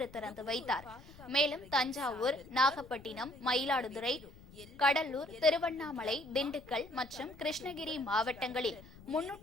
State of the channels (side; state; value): left; noise; rumble, 20 dB below the sound